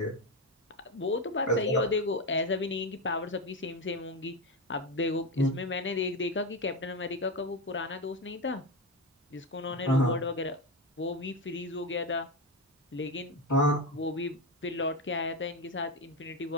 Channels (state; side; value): normal; both; correlation 0.14